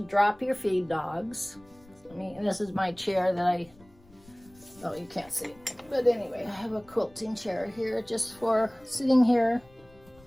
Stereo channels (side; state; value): left; noise; rumble, 26 dB below the sound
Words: drop your feed dogs. And this is my chair that I Oh, you can't see it. But anyway, I have a quilting chair here just for sitting here.